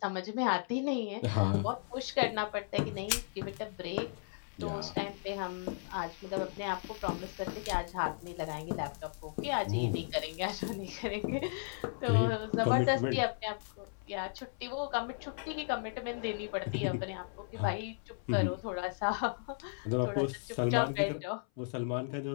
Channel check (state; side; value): silent; right; 54 dB below the other